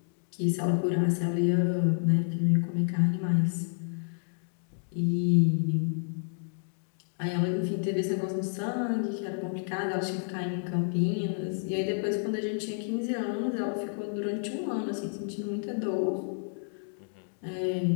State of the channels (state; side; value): silent; right; digital silence